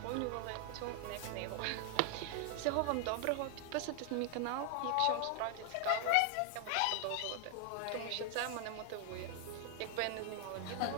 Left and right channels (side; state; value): both; different; correlation 0.00